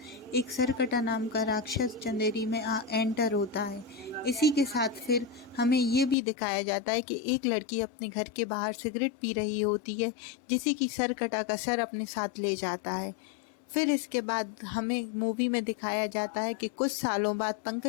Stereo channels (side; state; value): right; drops out; at 6.2 s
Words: एक सरकटा नाम का राक्षस चंदेरी में एंटर होता है। इसी के साथ फिर हमें ये भी दिखाया जाता है कि एक लड़की अपने घर के बाहर सिगरेट पी रही होती है, जिसे कि सरकटा का सर अपने साथ ले जाता है। फिर इसके बाद हमें मूवी में दिखाया जाता है कि कुछ सालों बाद